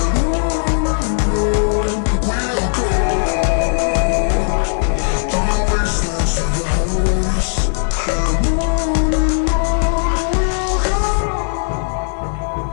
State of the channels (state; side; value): silent; right; 57 dB below the other